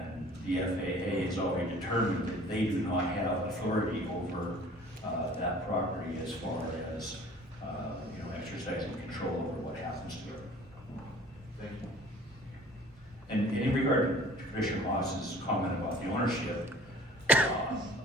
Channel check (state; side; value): normal; both; correlation 0.49